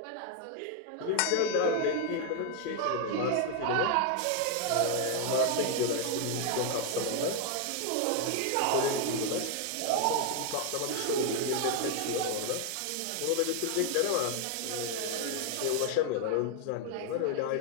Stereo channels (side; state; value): both; different; correlation 0.00